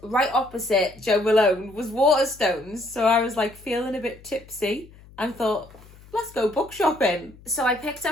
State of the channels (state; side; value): noise; left; hum, 23 dB below the sound